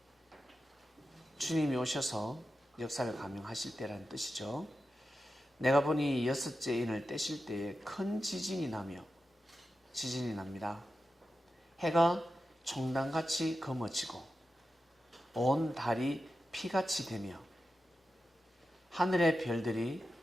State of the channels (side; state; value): both; normal; correlation 0.91